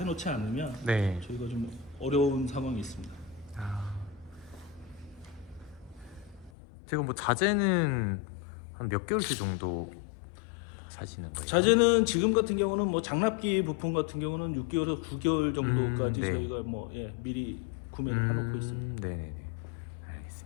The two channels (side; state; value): right; drops out; at 6.5 s